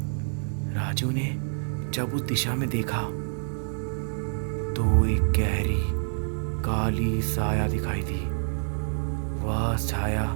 राजू ने जब उस दिशा में देखा तो एक गहरी काली साया दिखाई दी। वह छाया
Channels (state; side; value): silent; left; digital silence